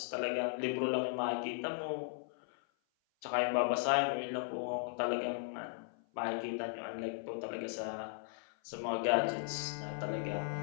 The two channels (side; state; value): right; silent; 53 dB below the other